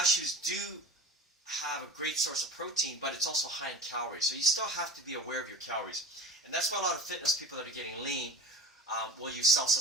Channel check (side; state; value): both; normal; correlation 0.35